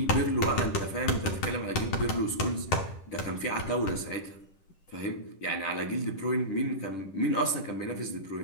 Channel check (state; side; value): late; right; 10 ms